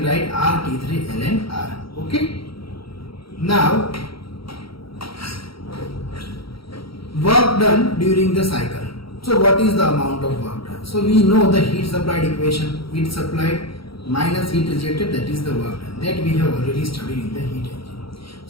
write RT3 ln R. Okay. Now work done during the cycle. So what is the amount of work done? So we know the heat supplied equation, heat supplied minus heat rejected, that is the work done, that we have already studied in the heat engine.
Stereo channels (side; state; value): right; late; 0.75 ms